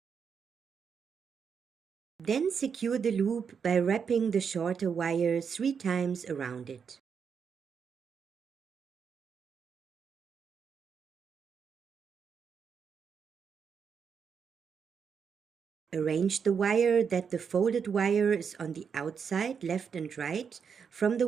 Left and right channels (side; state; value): left; quieter; 6.6 dB